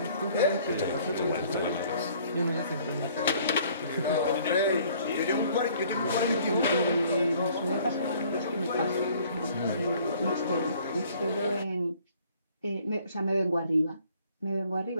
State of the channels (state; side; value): inverted; both; correlation -0.58